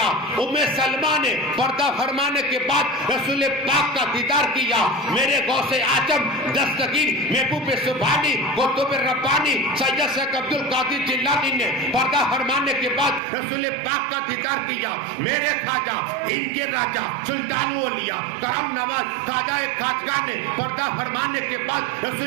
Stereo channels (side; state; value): left; drops out; at 13.2 s